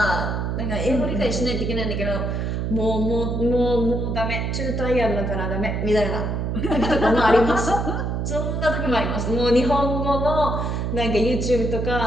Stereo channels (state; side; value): noise; right; hum, 1 dB below the sound